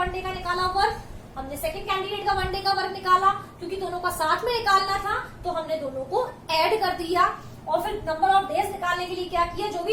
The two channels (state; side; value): identical; both; correlation 1.00